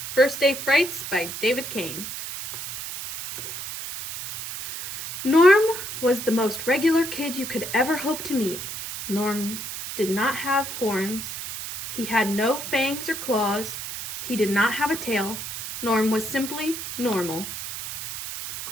First Day Frights by Dave Keane. Norm was the most regular kid you could ever hope to meet. Norm did not have horns. He had no fangs or claws. He did not have a tail. Norm was simply normal.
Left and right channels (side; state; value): right; noise; hiss, 7 dB below the sound